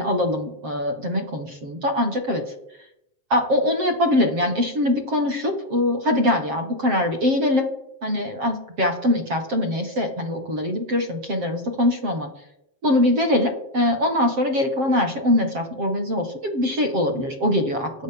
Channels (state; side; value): late; left; 7.5 ms